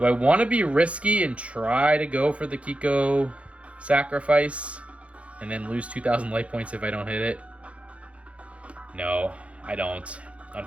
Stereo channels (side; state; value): left; late; 0.063 ms